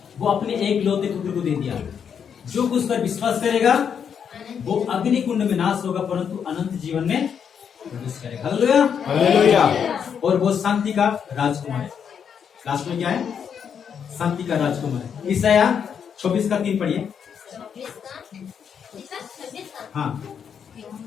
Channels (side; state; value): right; quieter; 7.5 dB